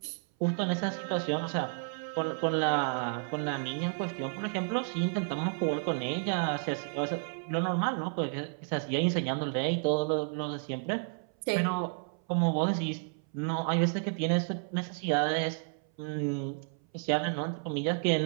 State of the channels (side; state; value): left; silent; 57 dB below the other